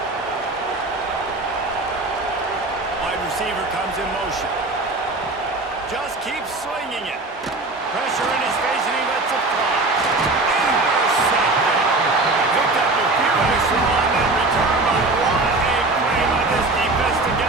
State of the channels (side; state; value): left; quieter; 3.1 dB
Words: Wide receiver comes in motion. Just keeps swinging it. Pressure in his face, and he lets it fly. Intercepted. Picked up a few extra on that return, but what a play by this defense to